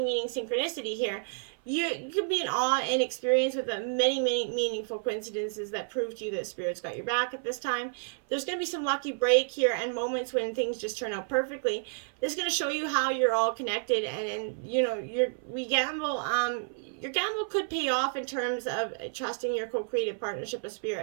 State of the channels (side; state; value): left; silent; 56 dB below the other